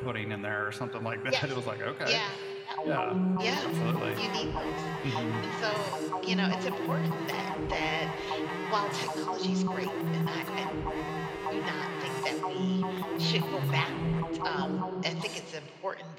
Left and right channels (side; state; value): both; identical; correlation 1.00